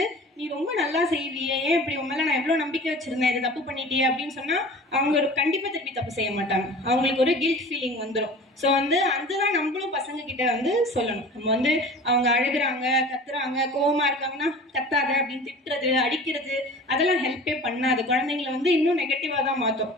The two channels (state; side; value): normal; both; correlation 0.40